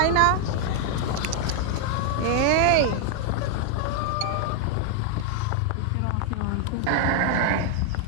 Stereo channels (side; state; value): both; different; correlation 0.00